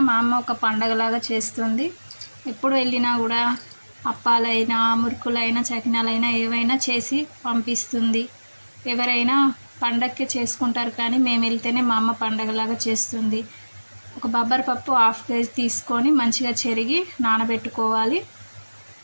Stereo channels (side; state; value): both; inverted; correlation -1.00